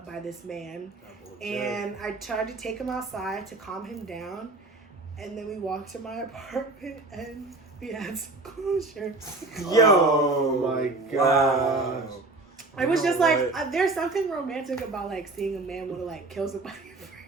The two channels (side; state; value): left; quieter; 3.1 dB